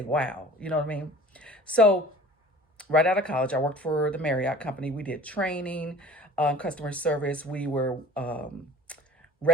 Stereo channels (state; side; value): normal; both; correlation 0.45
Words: wow. You know what I mean? So right out of college, I worked for the Marriott company. We did training, customer service. We were